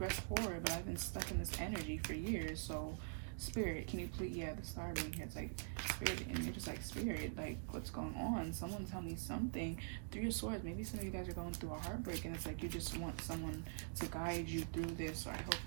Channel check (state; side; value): silent; left; digital silence